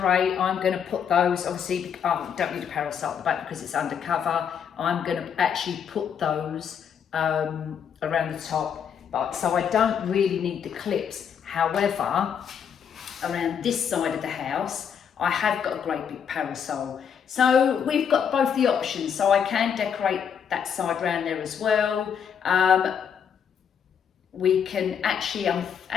I'm going to put those, obviously, don't need a parasol at the back because it's undercover. I'm going to actually put those around the top. But so I don't really need the clips. However, around this side of the house, I have got a great big parasol. So we've got both the options. So I can decorate that side around there as well. We can actually, I'm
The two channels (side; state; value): right; quieter; 7.7 dB